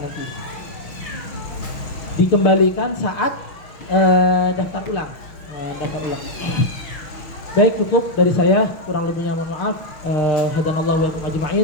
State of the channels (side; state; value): right; late; 6.2 ms